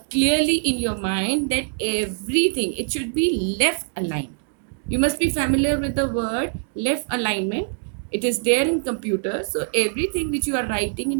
clearly in your mind, that everything, it should be left aligned. You must be familiar with the word left alignment. It is there in computer. So everything which you are writing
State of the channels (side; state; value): left; silent; 63 dB below the other